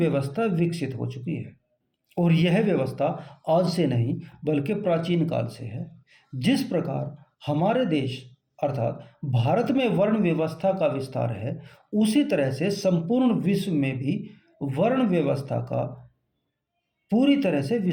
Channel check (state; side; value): identical; both; correlation 1.00